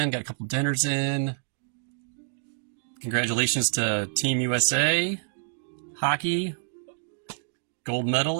got a couple dinners in. Congratulations to Team USA, hockey, gold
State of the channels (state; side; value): silent; left; digital silence